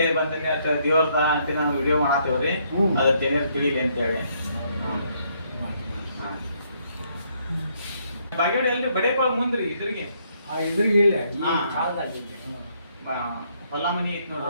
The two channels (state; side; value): inverted; both; correlation -0.71